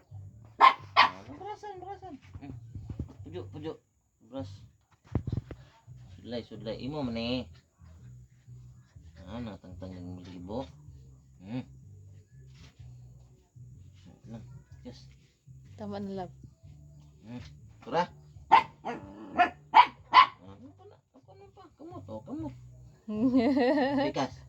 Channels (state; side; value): identical; both; correlation 1.00